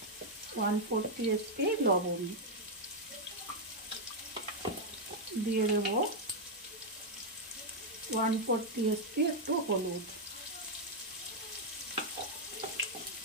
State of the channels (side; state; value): both; normal; correlation -0.02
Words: 1/4 টিস্পুন লবণ। দিয়ে দেব 1/4 টিস্পুন একটু হলুদ।